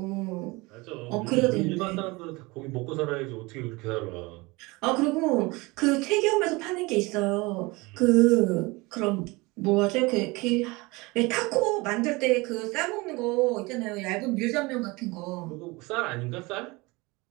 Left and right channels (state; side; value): quieter; left; 24.0 dB